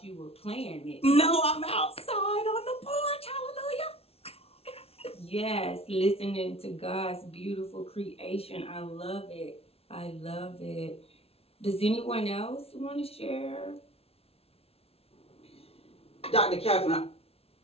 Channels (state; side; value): late; right; 0.29 ms